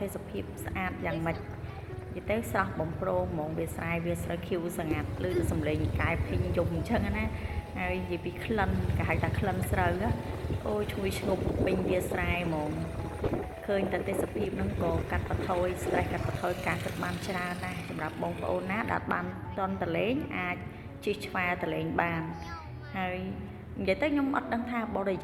េសភាពស្អាតយ៉ាងម៉េចនិយាយទៅស្រស់បំព្រងហ្មងវាស្រែវាស្រូវខៀវស្ងាត់ឮទៅសំឡេងកែភីងយំអញ្ចឹងណាហើយនិយាយពីក្លិនគេហៅថាក្លិនស្រូវអូឈ្ងុយឈ្ងប់ពេញវាស្រែហ្មងឃើញតែទេសភាពហ្នឹងក៏កាត់បន្ថយ stress កាត់បន្ថយការគិតបានច្រើនណាស់សម្រាប់បងប្អូនណាដែលបានតន់តលេងអាចជិះឆ្វែលតលេងបានហើយនិយាយទៅខ្ញុំអត់ដឹងថាបរិ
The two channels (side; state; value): both; identical; correlation 1.00